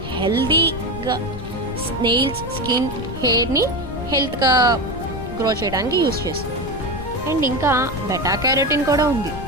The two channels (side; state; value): left; noise; rumble, 10 dB below the sound